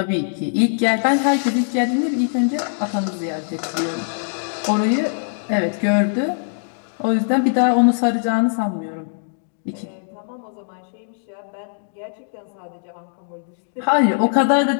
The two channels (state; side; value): silent; right; digital silence